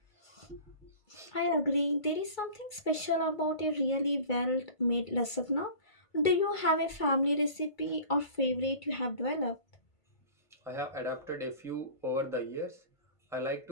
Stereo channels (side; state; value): right; late; 2.3 ms